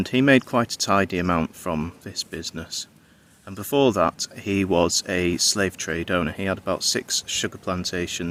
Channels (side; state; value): both; identical; correlation 1.00